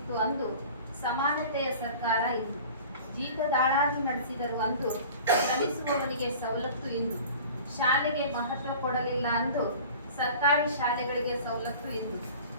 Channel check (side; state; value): both; inverted; correlation -0.42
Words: ಅಂದು, ಸಮಾನತೆಯ ಸರ್ಕಾರ ಇಂದು. ಜೀತದಾಳಾಗಿ ನಡೆಸಿದರು ಅಂದು, ಶ್ರಮಿಸುವವನಿಗೆ ಸವಲತ್ತು ಇಂದು. ಶಾಲೆಗೆ ಮಹತ್ವ ಕೊಡಲಿಲ್ಲ ಅಂದು, ಸರ್ಕಾರಿ ಶಾಲೆಗಳಿಗೆ ಸವಲತ್ತು ಇಂದು.